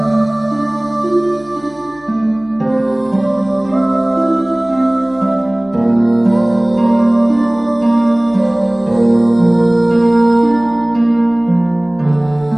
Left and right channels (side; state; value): left; noise; hum, 28 dB below the sound